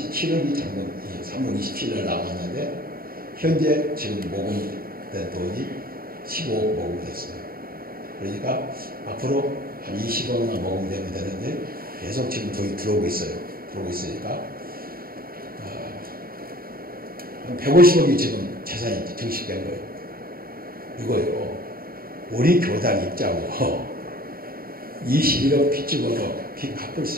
장금 3월 27일 남았는데 현재 지금 모금된 돈이 15억 모금됐어요. 그러니까 앞으로 한 20억만 모금되면 되는데 계속 지금 돈이 들어오고 있어요. 들어오고 있으니까 한 150억이 지금 재산이 증식된 거예요. 이거요. 우리 교단 입장으로 21억 빚 집어도 빚 갚을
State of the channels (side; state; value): left; late; 0.43 ms